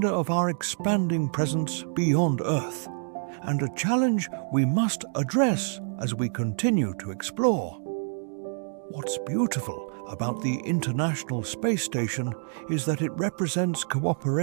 of our expanding presence beyond Earth, and a challenge we must address as we continue to explore. What's beautiful about the International Space Station is that it represents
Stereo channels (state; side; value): silent; left; 60 dB below the other